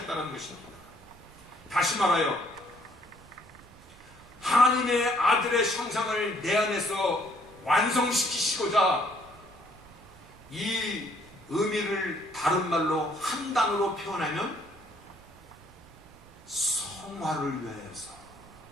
것입니다. 다시 말하여 하나님의 아들의 형상을 내 안에서 완성시키시고자 이 의미를 다른 말로 한 단어로 표현하면 성화를 위하여서,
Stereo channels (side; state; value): right; noise; rumble, 23 dB below the sound